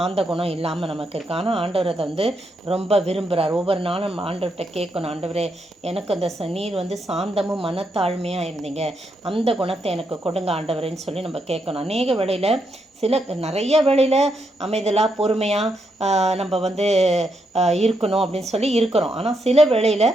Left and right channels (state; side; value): normal; both; correlation 0.80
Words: குணம் இல்லாமல் நமக்கு இருக்குது. ஆனால் ஆண்டவர் அதை ரொம்ப விரும்புகிறார். ஒவ்வொரு நாளும் ஆண்டவர்கிட்ட கேட்கணும், ஆண்டவரே எனக்கு அந்த நீர் சாந்தமும் மனத்தாழ்மையாக இருந்தீங்க, அந்த குணத்தை எனக்கு கொடுங்க ஆண்டவரேன்னு சொல்லி நம்ம கேட்கணும். அநேக வேளையில் நிறைய வேளையில் அமைதலாக பொறுமையாக நம்ம இருக்கணும் அப்படின்னு சொல்லி இருக்கிறோம். ஆனால் சில வேளையில்